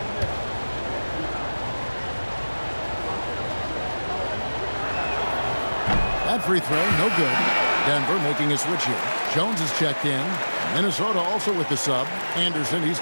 That free throw, no good. Denver making a switch here. Jones is checked in. Minnesota also with the sub. Anderson, he's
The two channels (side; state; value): both; inverted; correlation -1.00